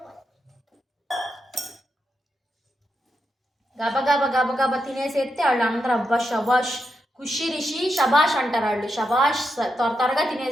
గబగబా తినేసేస్తే వాళ్ళు అందరూ అబ్బా షబాష్ ఖుషి రిషి షబాష్ అంటారు. వాళ్ళు షబాష్ త్వరగా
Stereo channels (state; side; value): normal; both; correlation 0.85